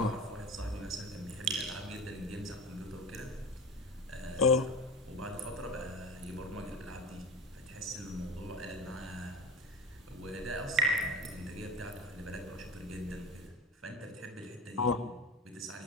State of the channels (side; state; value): both; normal; correlation 0.31